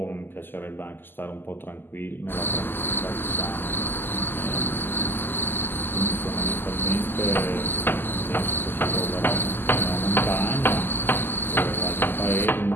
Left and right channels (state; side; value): late; right; 0.097 ms